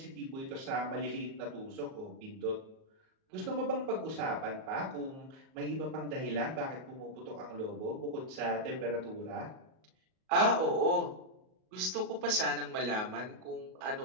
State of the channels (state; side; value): late; left; 38 ms